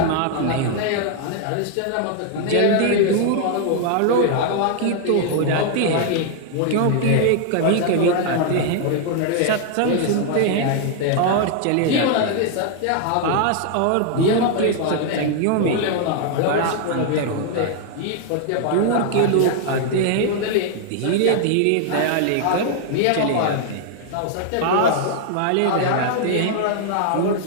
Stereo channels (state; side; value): different; both; correlation 0.00